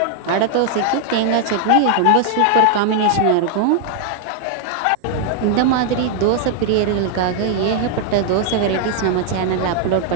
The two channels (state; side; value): different; both; correlation 0.00